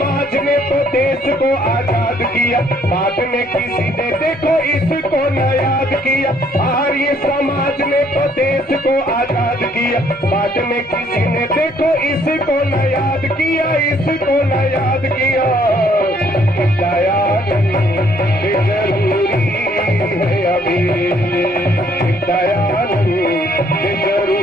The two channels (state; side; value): normal; both; correlation 0.65